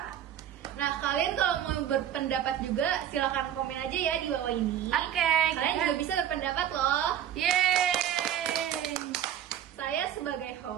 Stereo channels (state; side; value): quieter; left; 10.3 dB